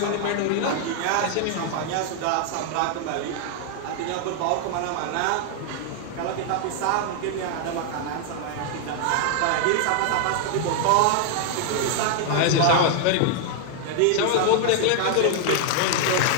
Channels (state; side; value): different; both; correlation 0.00